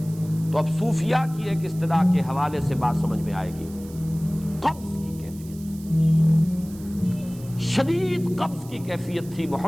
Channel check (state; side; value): noise; right; hiss, 21 dB below the sound